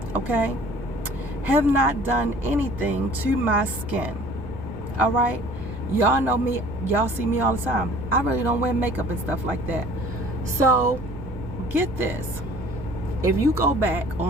Okay? Have not done anything to my skin. All right? Y'all know me. Y'all see me all the time. I really don't wear makeup and stuff like that. So, get this. If you go back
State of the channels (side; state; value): both; normal; correlation 0.50